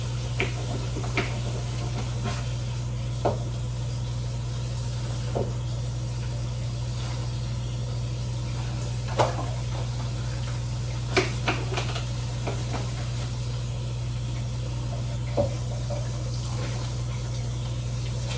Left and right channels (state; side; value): identical; both; correlation 1.00